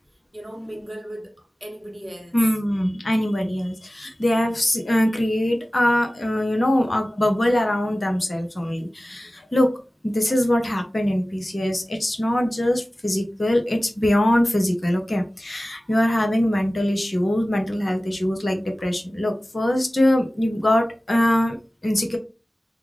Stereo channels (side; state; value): both; normal; correlation 0.97